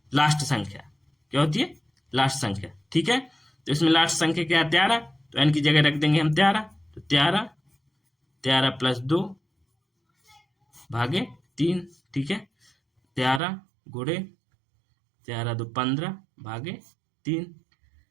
लास्ट संख्या, क्या होती है लास्ट संख्या। ठीक है, तो इसमें लास्ट संख्या क्या है 13, तो n की जगह रख देंगे हम 13, तो 13+2 भागे 3। ठीक है, 13 गुणे 13 2 15 भागे 3,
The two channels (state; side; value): drops out; left; at 13.4 s